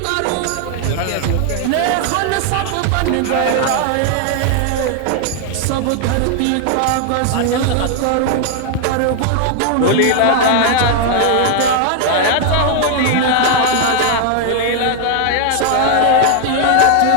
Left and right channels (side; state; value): both; different; correlation 0.00